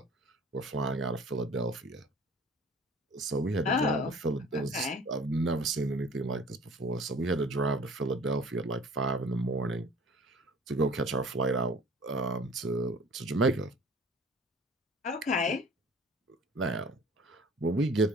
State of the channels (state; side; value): normal; both; correlation 0.48